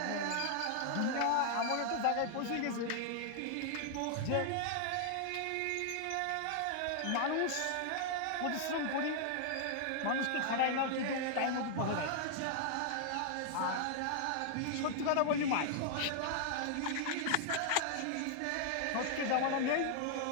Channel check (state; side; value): different; both; correlation 0.00